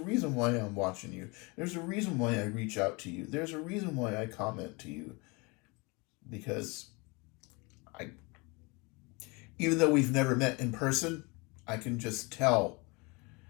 why I'm watching you. There's a reason why I reach out to you. There's a reason why I comment to you. Because even though we've never met in person, I can just tell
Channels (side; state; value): right; quieter; 28.0 dB